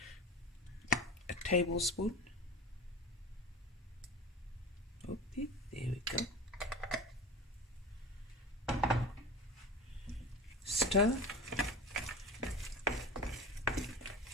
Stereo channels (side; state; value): both; normal; correlation 0.32